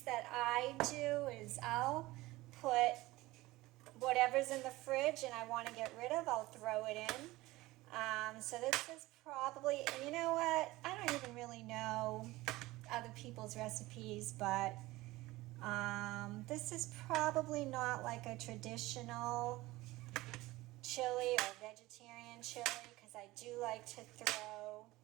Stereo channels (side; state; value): left; quieter; 19.1 dB